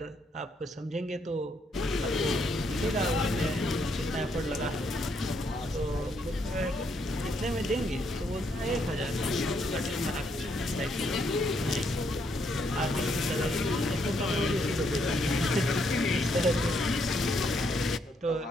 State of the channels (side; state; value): both; normal; correlation 0.74